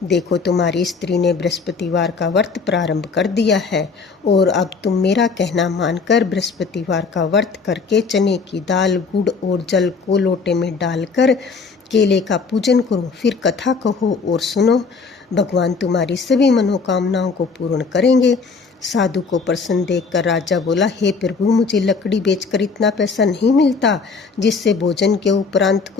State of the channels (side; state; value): right; quieter; 4.8 dB